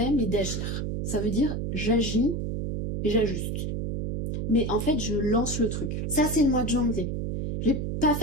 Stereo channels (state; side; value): noise; right; hum, 2 dB below the sound